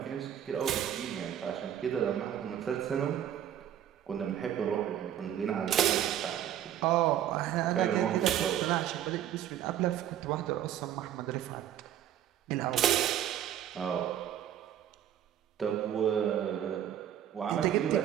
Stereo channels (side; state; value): left; quieter; 10.7 dB